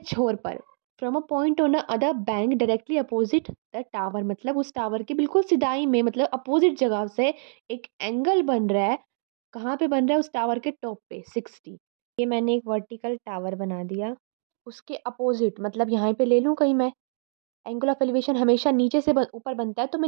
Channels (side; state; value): left; silent; 61 dB below the other